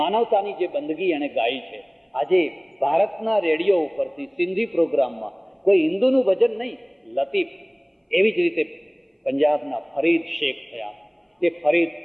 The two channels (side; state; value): both; identical; correlation 1.00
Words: માનવતાની જે બંદગી એણે ગાઈ છે. આજે ભારતના રેડિયો ઉપરથી સિંધી પ્રોગ્રામમાં કોઈ હિન્દુનું ભજન નહીં, લતીફ. એવી જ રીતે પંજાબના ફરીદ શેખ થયા.